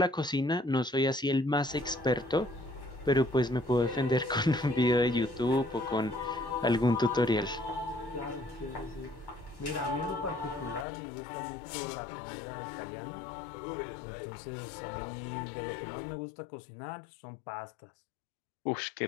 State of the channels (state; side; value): drops out; right; at 10.9 s